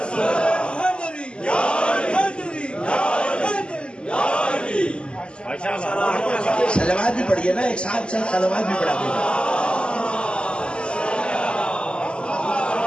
حیدری، حیدری، حیدری۔ صلوات بھی پڑھیے نا، ایک ساتھ صلوات بھی پڑھا دینا۔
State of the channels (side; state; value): right; late; 0.052 ms